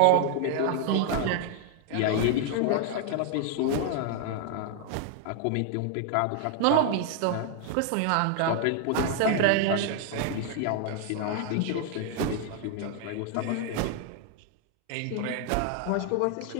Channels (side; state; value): both; different; correlation 0.00